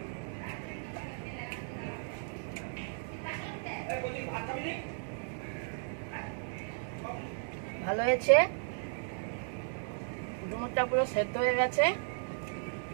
ভালো হয়েছে, ডুমুরটা পুরো সেদ্ধ হয়ে গেছে,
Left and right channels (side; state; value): left; silent; 54 dB below the other